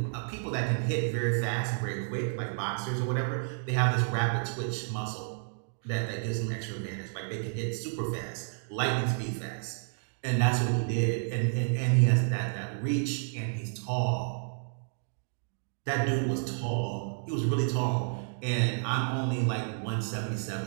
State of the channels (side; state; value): left; silent; digital silence